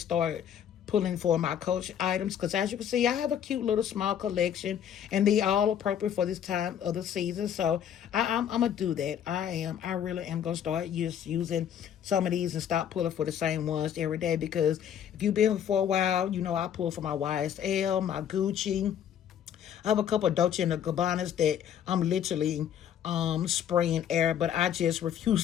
start pulling for my Coach items. Because as you can see, I have a cute little small collection and they all appropriate for this time of the season. So I'm going to do that. I really am going to start using some of these and stop pulling for the same ones every day. Because if you've been for a while, you know I pull for my YSL, my Gucci. I have a couple of Dolce and Gabbanas that I'm literally spraying air, but I just refuse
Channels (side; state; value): right; quieter; 9.4 dB